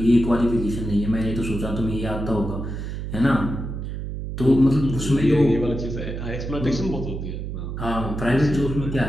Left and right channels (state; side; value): noise; right; hum, 6 dB below the sound